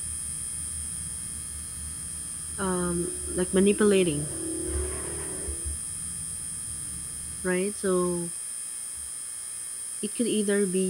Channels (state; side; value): identical; both; correlation 1.00